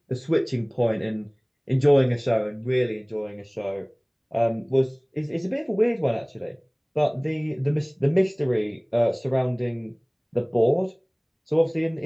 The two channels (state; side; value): identical; both; correlation 1.00